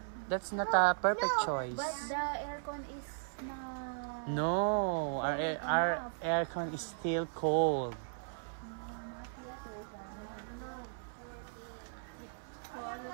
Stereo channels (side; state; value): left; silent; 53 dB below the other